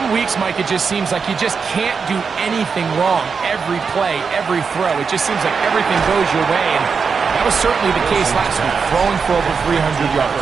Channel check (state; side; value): quieter; left; 5.6 dB